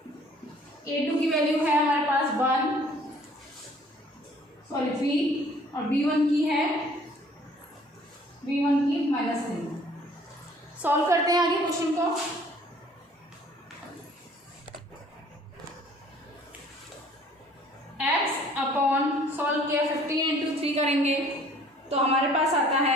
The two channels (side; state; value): both; normal; correlation 0.55